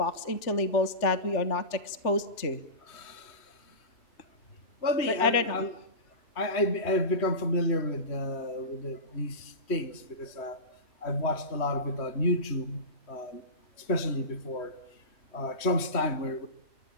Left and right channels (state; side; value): late; right; 3.1 ms